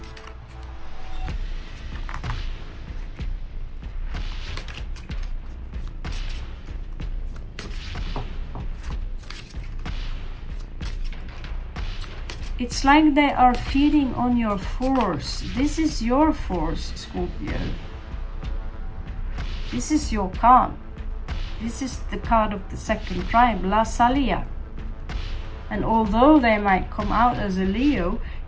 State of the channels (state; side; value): identical; both; correlation 1.00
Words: It's like they are feeding on your force. This is your force, Scorpio. This is your card. This is the card of the second tribe, La Salia. And although they might come out as a Leo,